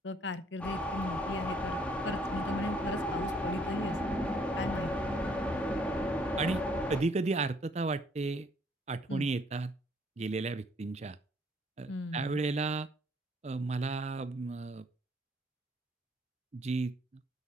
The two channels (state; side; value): normal; both; correlation 0.64